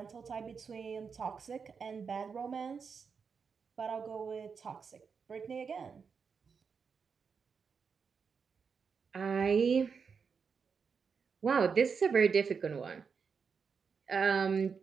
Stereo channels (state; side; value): quieter; left; 5.8 dB